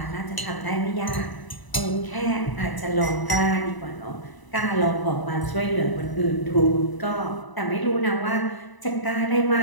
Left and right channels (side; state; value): right; late; 1.0 ms